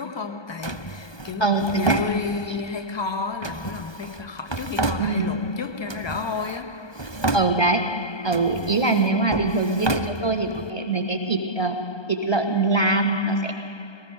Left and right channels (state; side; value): late; right; 1.2 ms